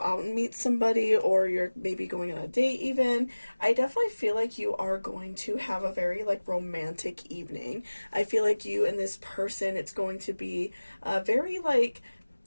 and meet somebody, or you're maybe going on a date even, I definitely feel like you are going to have a very romantic evening. I feel like you and this person, it's going to be very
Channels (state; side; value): inverted; both; correlation -1.00